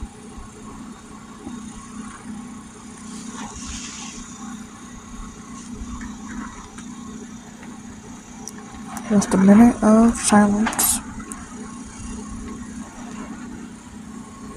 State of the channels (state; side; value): identical; both; correlation 1.00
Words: Just a minute of silence.